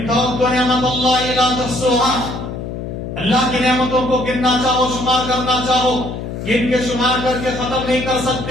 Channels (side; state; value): left; noise; hum, 7 dB below the sound